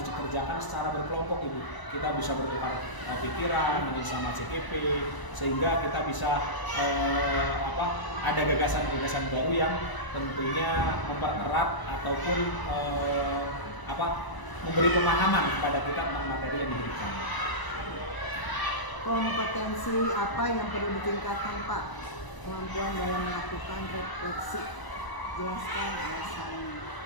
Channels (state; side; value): late; right; 1.0 ms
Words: dikerjakan secara berkelompok Ibu. Kita bisa bertukar pikiran sama CGP sehingga kita bisa ada gagasan-gagasan baru yang tentunya mempererat ataupun memberi pemahaman kepada kita tentang materi yang diberikan. Kompetensi apa yang perlu ditingkatkan Pak? Kemampuan dalam melakukan refleksi, jelaskan alasannya.